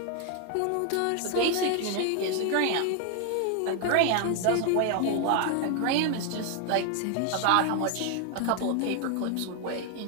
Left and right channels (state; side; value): different; both; correlation 0.00